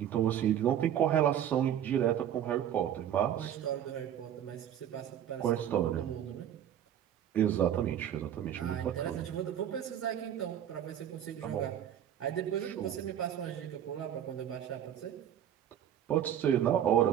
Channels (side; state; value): left; quieter; 10.2 dB